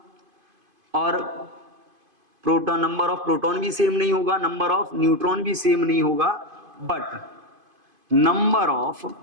और प्रोटॉन, नंबर ऑफ प्रोटॉन भी सेम नहीं होगा, नंबर ऑफ न्यूट्रॉन भी सेम नहीं होगा, बट नंबर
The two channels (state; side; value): late; left; 2.5 ms